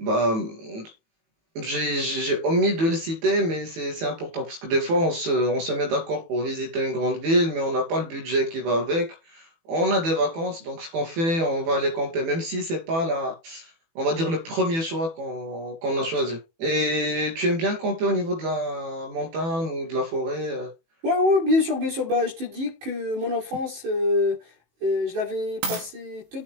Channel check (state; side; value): late; left; 18 ms